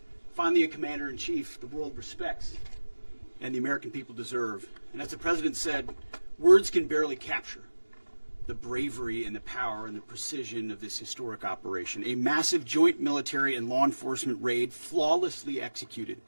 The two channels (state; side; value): inverted; both; correlation -1.00